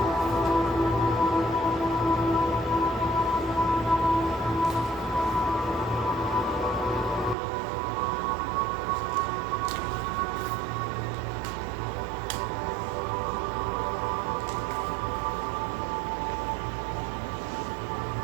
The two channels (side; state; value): left; drops out; at 7.4 s